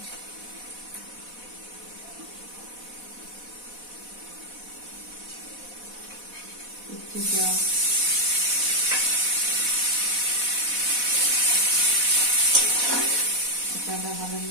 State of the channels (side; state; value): left; late; 4.1 ms